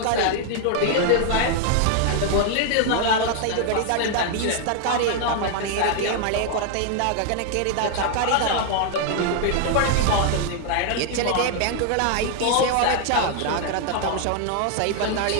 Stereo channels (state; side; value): different; both; correlation 0.00